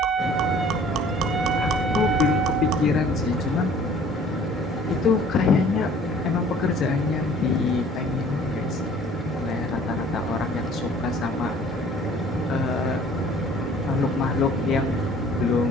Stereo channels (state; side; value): normal; both; correlation 0.53